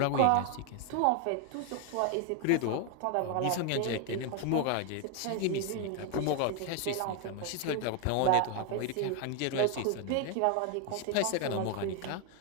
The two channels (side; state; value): both; different; correlation 0.01